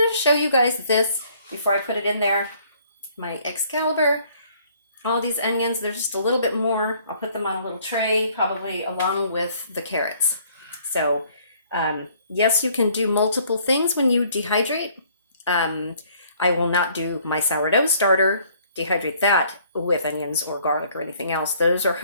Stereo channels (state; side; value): inverted; both; correlation -0.60